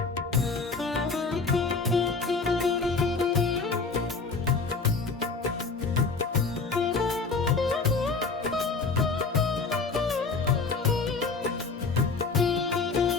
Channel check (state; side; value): quieter; right; 4.4 dB